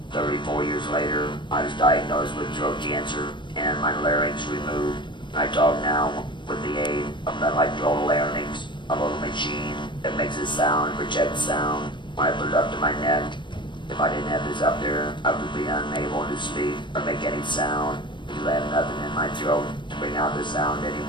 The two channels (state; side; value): late; right; 0.23 ms